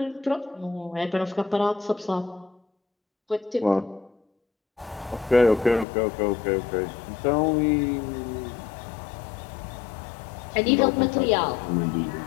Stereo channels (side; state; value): right; drops out; at 5.9 s